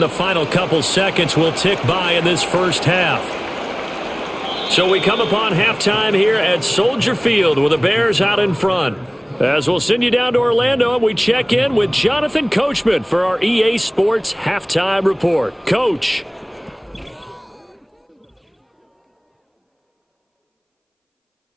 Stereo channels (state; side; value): identical; both; correlation 1.00